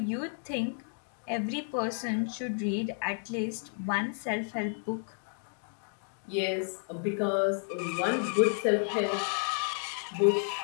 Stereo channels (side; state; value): right; silent; 57 dB below the other